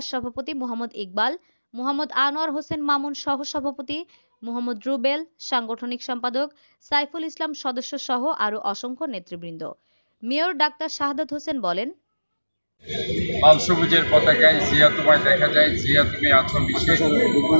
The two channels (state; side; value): inverted; both; correlation -1.00